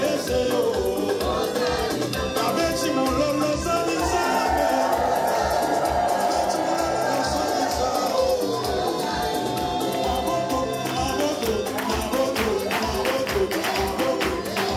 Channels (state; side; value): identical; both; correlation 1.00